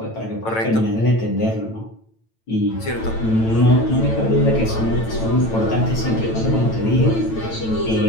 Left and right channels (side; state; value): right; late; 9.0 ms